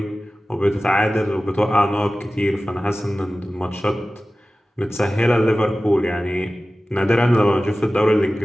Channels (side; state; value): both; normal; correlation 0.96